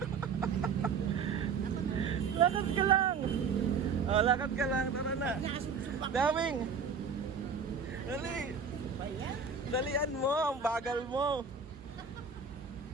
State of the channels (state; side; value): quieter; left; 5.6 dB